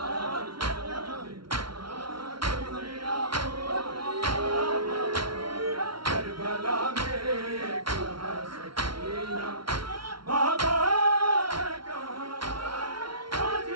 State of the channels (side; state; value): left; late; 0.74 ms